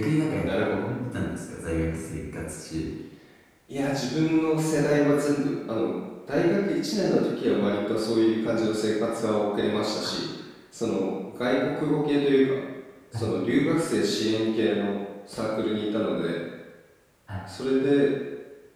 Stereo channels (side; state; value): both; identical; correlation 1.00